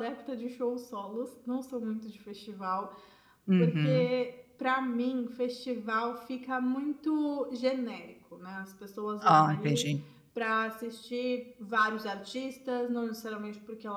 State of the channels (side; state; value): both; identical; correlation 1.00